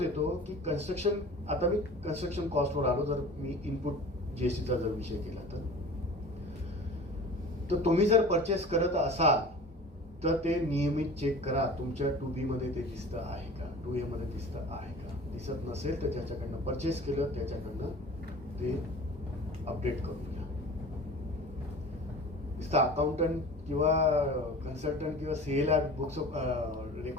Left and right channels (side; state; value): both; normal; correlation 0.40